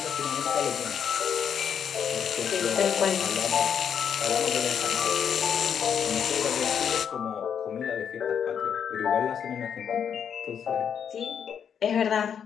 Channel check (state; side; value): quieter; right; 7.9 dB